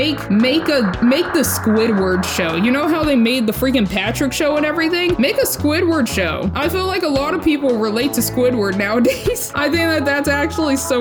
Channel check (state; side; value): identical; both; correlation 1.00